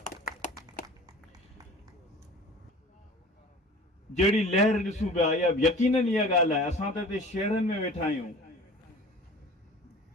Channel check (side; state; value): both; normal; correlation 0.42